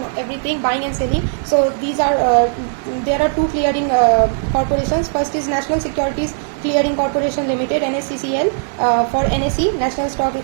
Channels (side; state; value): left; silent; digital silence